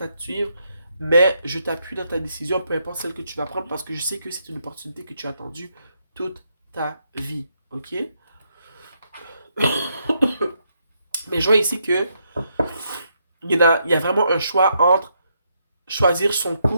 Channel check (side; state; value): both; inverted; correlation -0.77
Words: à te suivre. Mais je t'appuie dans ta décision, peu importe celle que tu vas prendre, parce que je sais que c'est une opportunité que tu as attendue toute ta vie, ok? Mais je vois ici que il y a vraiment un choix entre choisir son